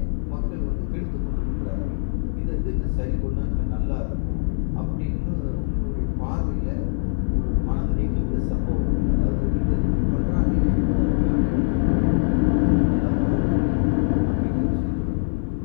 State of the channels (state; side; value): silent; right; 57 dB below the other